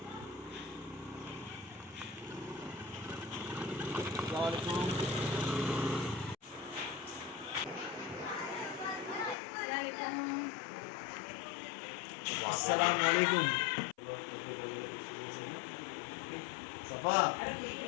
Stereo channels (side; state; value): right; drops out; at 9.3 s